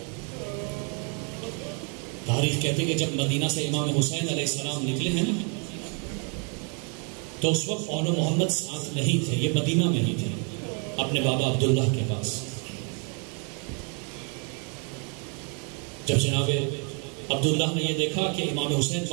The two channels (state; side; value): quieter; left; 37.7 dB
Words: تاریخ کہتے کہ جب مدینہ سے امام حسین علیہ السلام نکلے ہیں نا تو اس وقت اون و محمد ساتھ نہیں تھے, یہ مدینہ میں ہی تھے اپنے بابا عبداللہ کے پاس. جب جناب عبداللہ نے یہ دیکھا کہ امام حسین